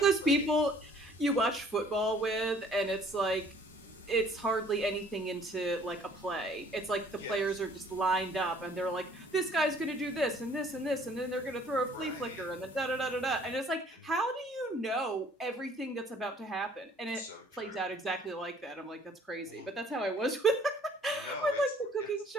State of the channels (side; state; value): both; normal; correlation 0.57